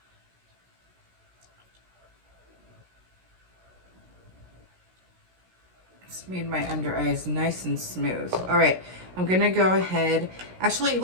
It's made my under eyes nice and smooth. All right, I'm gonna go ahead. Actually,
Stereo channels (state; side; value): late; left; 16 ms